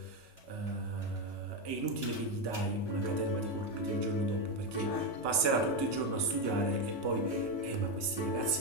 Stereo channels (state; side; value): late; right; 2.8 ms